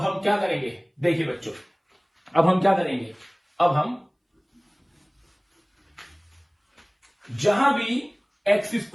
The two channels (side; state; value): both; identical; correlation 1.00